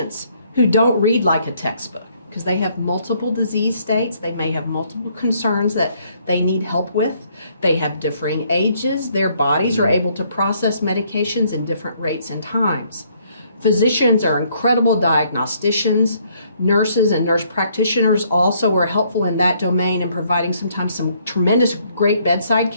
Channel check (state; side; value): inverted; both; correlation -0.67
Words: who don't read like a textbook because they have multiple disease states. They may have multiple concerns that they need help with. They have differing ages. Their bodies are able to process medications in different rates and times. Physicians are incredible diagnosticians. Nurses and nurse practitioners also are helpful in that domain and providing sometimes some tremendous great bedside